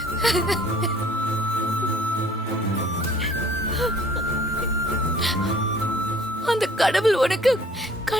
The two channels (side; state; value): both; normal; correlation 0.54